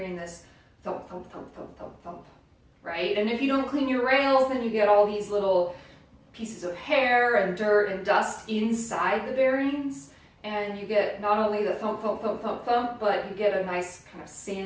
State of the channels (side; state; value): both; identical; correlation 1.00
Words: this thump, thump, thump, thump, thump, thump, right? And if you don't clean your rails, then you get all these little pieces of hair and dirt and dust inside the bearings. And you get not only the thump, thump, thump, thump, thump, but you get a nice kind of